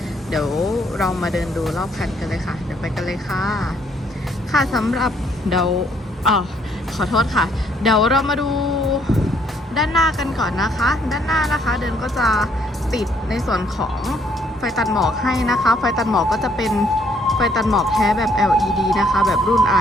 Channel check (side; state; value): both; normal; correlation 0.67